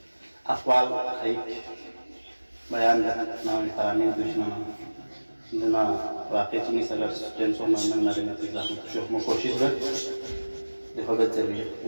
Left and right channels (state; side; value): inverted; both; correlation -1.00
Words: अक़वाल एक बयान नाम तरामीन दुश्मन जना वाक़ई चीनी सगर टेंसो मन नरे में तिला शोक में कोशिश कर देखो बच्चे भी